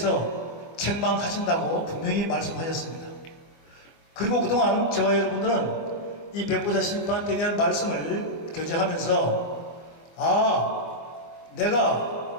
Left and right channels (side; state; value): right; late; 24 ms